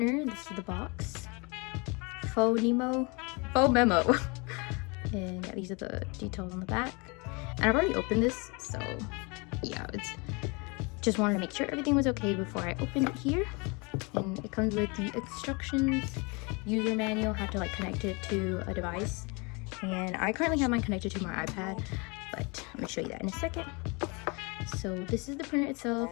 This is the box. Phomemo. And yeah, these are the details on the back. And I've already opened this, so yeah, it's just wanted to make sure everything was okay before I opened it here. And it comes with the instructions, user manual, how to like connect it to a device. And I currently have mine connected to my iPad, but I'm gonna show you that in a second. So this is the printer itself.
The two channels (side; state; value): right; quieter; 29.6 dB